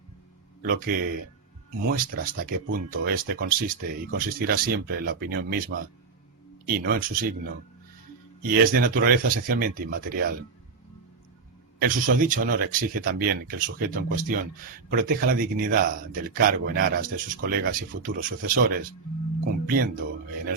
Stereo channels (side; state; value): left; quieter; 4.8 dB